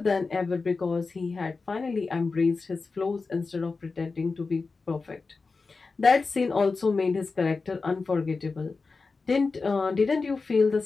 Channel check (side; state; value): right; quieter; 4.2 dB